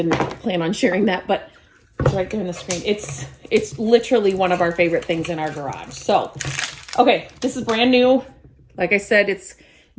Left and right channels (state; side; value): identical; both; correlation 1.00